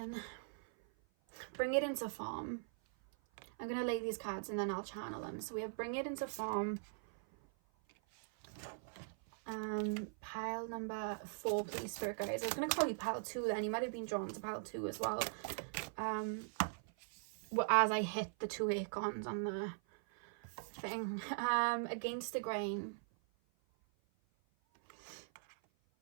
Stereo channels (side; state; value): left; silent; 50 dB below the other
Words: Bring it into form. I'm going to lay these cards and then I'll channel them. So we have bring it into form. Pile number 4, please, Spirit guys. I was going to call you pile 2 then. You might have been drawn to pile 2 as well. As I hit the 2 acorns on the thing. Against the grain.